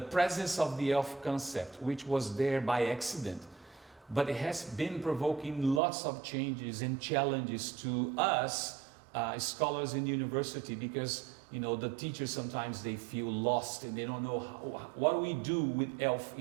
presence of the ELF concept, which was there by accident, but it has been provoking lots of changes and challenges to us, scholars in the university, because the teachers sometimes they feel lost and they don't know what do we do with ELF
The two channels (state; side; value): drops out; left; at 5.8 s